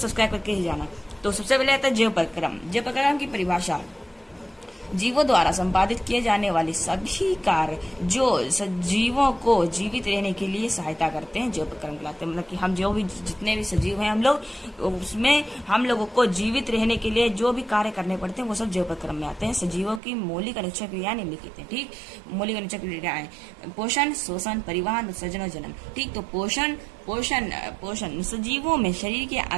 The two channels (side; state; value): left; drops out; at 20.0 s